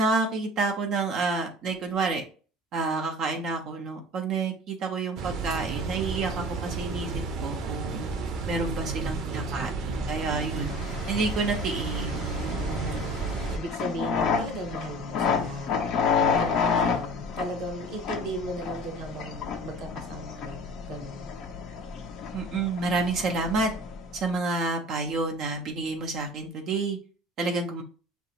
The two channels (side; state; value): both; normal; correlation 0.41